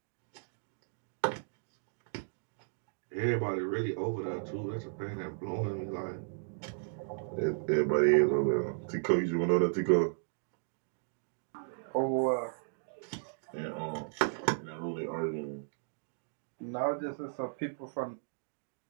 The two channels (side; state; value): left; silent; digital silence